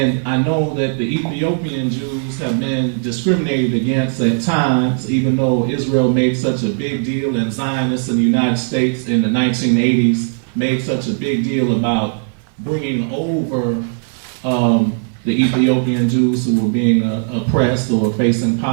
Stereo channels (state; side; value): silent; left; digital silence